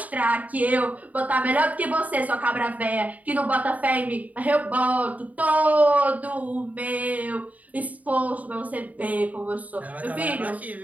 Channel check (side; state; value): left; late; 0.073 ms